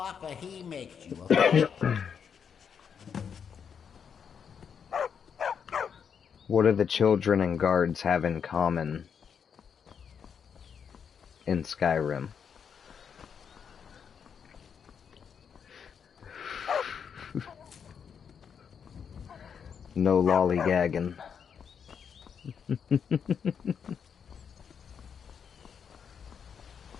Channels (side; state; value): right; quieter; 7.2 dB